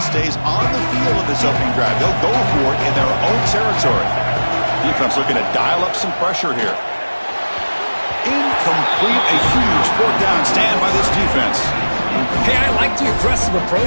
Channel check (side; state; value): both; inverted; correlation -1.00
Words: stays on the field of this opening drive. They'll go for it in their own territory. Defense looking to dial up some pressure here. Incomplete, a huge fourth down stand by this defense. Hey, I like the aggressive